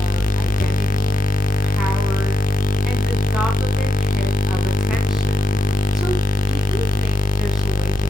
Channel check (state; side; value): normal; both; correlation 0.83